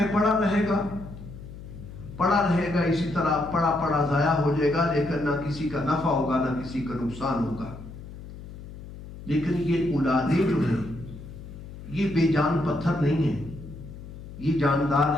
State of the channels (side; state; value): left; noise; hum, 13 dB below the sound